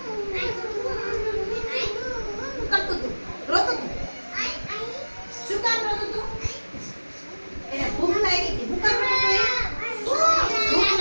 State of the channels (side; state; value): both; inverted; correlation -1.00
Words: કરતું તું, રોતું તું. શું કામ રોતું તું? એને ભૂખ લાગી હતી. ભૂખ કામ રોતું ભૂખ